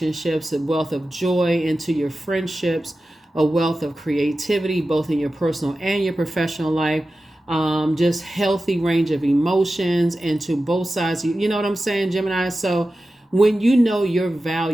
a wealth of joy into your friendships, a wealth of creativity both in your personal and your professional life, just healthy range of emotions into both sides. You know what I'm saying, Gemini? So when you know your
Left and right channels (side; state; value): both; normal; correlation 0.94